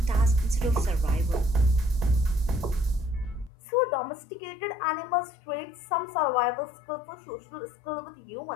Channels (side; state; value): right; drops out; at 3.5 s